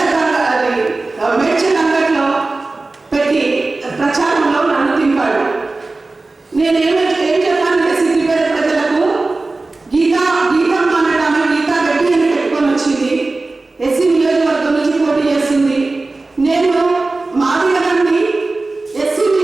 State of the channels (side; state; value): left; quieter; 3.4 dB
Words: మేడ్చల్ అంగడిలో పెట్టి ప్రచారంలో నన్ను తింపాడు. నేనేం చెప్పానంటే సిద్దిపేట ప్రజలకు గీతమ్మ అనడామె గీతా రెడ్డి అని పెట్టుకొని వచ్చింది. ఎస్సీ నియోజకవర్గం నుంచి పోటీ చేస్తుంది. నేను మాదిగని ఎస్సీ